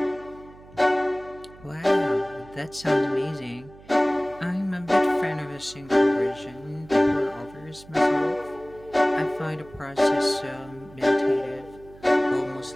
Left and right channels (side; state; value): right; noise; hum, 22 dB below the sound